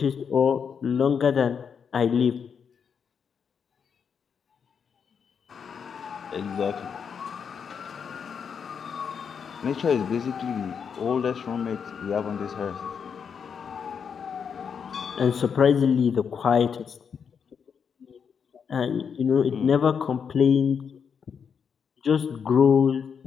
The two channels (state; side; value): quieter; right; 6.8 dB